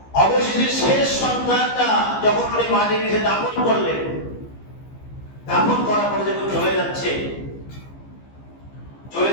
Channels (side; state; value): right; late; 15 ms